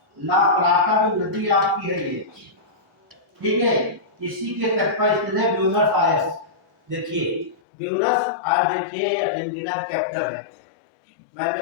ला प्लाटा जो नदी आपकी है ये, ठीक है। इसी के तट पर स्थित है ब्यूनस आयर्स। देखिए ब्यूनस आयर्स, देखिए अर्जेंटीना का कैपिटल है। मैंने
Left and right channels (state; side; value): drops out; right; at 7.6 s